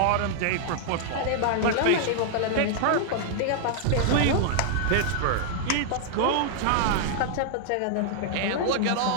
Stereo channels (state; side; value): different; both; correlation -0.01